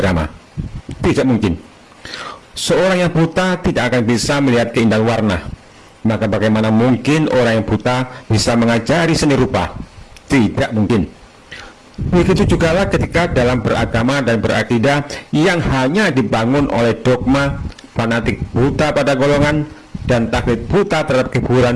Tidak mungkin. Seorang yang buta tidak akan bisa melihat keindahan warna. Maka bagaimana mungkin orang yang buta bisa mengajari seni rupa? Tidak mungkin. Begitu juga ketika dalam beragama dan berakidah yang hanya dibangun oleh dogma, fanatik buta pada golongan, dan taklid buta terhadap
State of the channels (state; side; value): identical; both; correlation 1.00